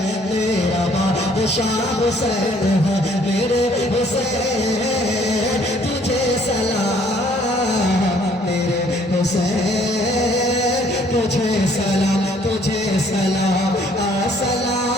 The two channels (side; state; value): both; normal; correlation 0.61